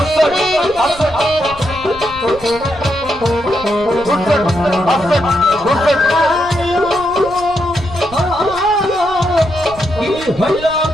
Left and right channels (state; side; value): noise; right; rumble, 18 dB below the sound